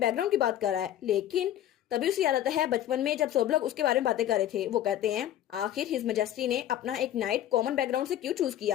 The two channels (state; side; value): quieter; right; 11.9 dB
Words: की बात कर रहा है, लेकिन तभी उसे याद आता है बचपन में जब सब लोग उसके बारे में बातें कर रहे थे। वो कहते हैं आखिर हिज मैजेस्टी ने अपना एक नाइट कॉमन बैकग्राउंड से क्यों चूज